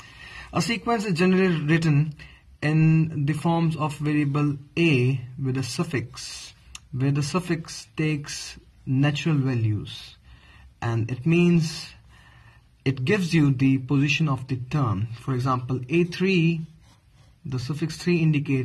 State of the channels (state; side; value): identical; both; correlation 1.00